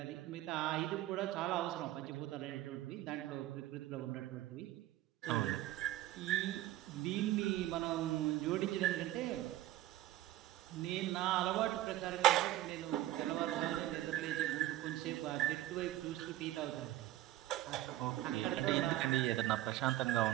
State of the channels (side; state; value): left; quieter; 14.6 dB